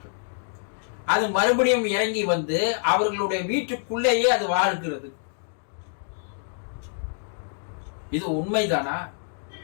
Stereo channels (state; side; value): silent; right; digital silence